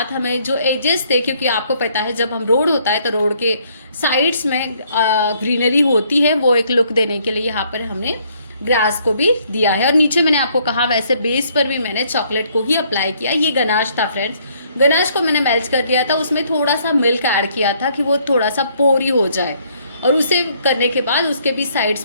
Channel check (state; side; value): inverted; both; correlation -0.66